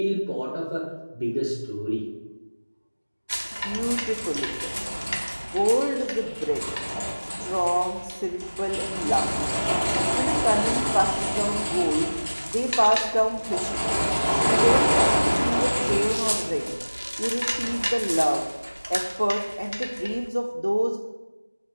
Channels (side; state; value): both; inverted; correlation -1.00